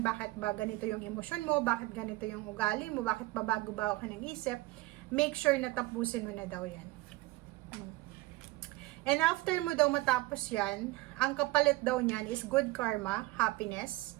ba ganito yung emosyon mo, bakit ganito yung ugali mo, bakit ba bago-bago ka ng isip. Make sure na tapusin mo na daw yan. And after mo daw matapos yan, ang kapalit daw niyan is good karma, happiness,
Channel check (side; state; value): left; quieter; 20.6 dB